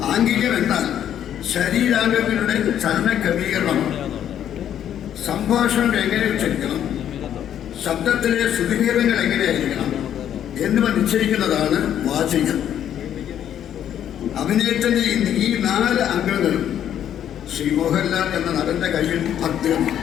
ആംഗികം എന്നാൽ ശരീരാംഗങ്ങളുടെ ചലന ക്രമീകരണമാണ്. സംഭാഷണം എങ്ങനെ ഉച്ചരിക്കണം, ശബ്ദത്തിലെ ശ്രുതിഭേദങ്ങൾ എങ്ങനെയായിരിക്കണം എന്നിവ നിശ്ചയിക്കുന്നതാണ് വാചികം. അഭിനയത്തിന്റെ ഈ 4 അംഗങ്ങളും ശ്രീ മോഹൻലാൽ എന്ന നടന്റെ കയ്യിൽ ഭദ്രമാണ്.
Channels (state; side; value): quieter; right; 10.2 dB